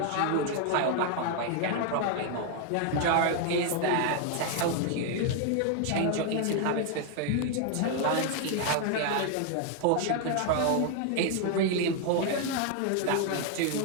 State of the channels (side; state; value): both; different; correlation 0.00